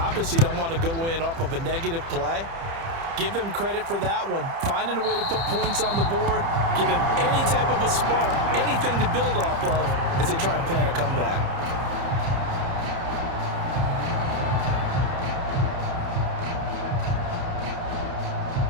don't want to go in off of a negative play. Give them credit for that one. Finding a way to put points on the board, give them any type of a spark, anything to build off of as they try and plan a comeback.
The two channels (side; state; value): left; late; 30 ms